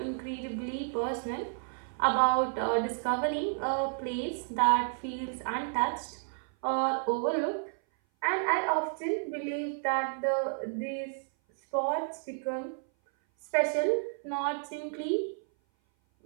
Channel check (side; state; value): left; silent; 56 dB below the other